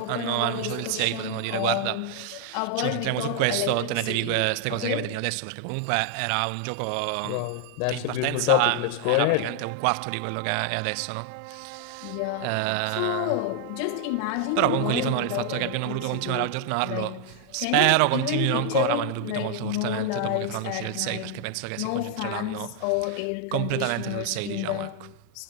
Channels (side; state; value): both; different; correlation 0.00